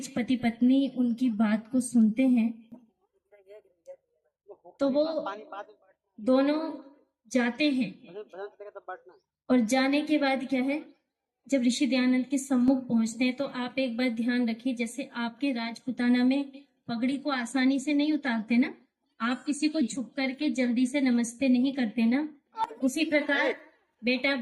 पति पत्नी उनकी बात को सुनते हैं तो वो दोनों जाते हैं और जाने के बाद क्या है, जब ऋषि दयानंद के सम्मुख पहुंचते हैं तो आप एक बात ध्यान रखिए, जैसे आपके राजपुताना में पगड़ी को आसानी से नहीं उतारते ना, आप किसी को झुक करके जल्दी से नमस्ते नहीं करते ना, उसी प्रकार बेटा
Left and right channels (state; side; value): identical; both; correlation 1.00